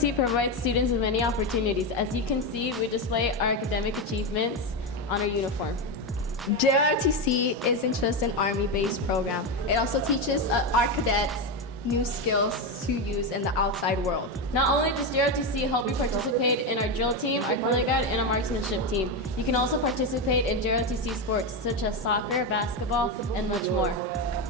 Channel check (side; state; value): both; normal; correlation 0.12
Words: provides students with many opportunities. As you can see, we display our academic achievements on our uniform. JRTC isn't just an Army-based program. It also teaches our cadets new skills to use in the outside world. Not only does JROTC help you participate in our drill team, our color guide, and our marksmanship team, you can also participate in JROTC sports such as soccer, basketball, and much more.